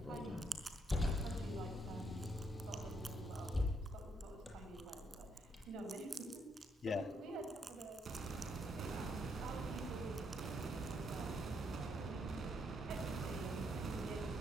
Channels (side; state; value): both; normal; correlation 0.75